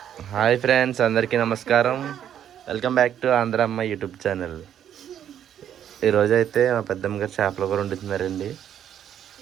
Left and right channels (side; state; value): left; quieter; 9.9 dB